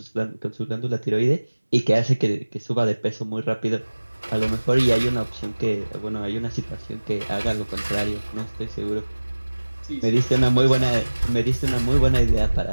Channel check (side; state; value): both; inverted; correlation -1.00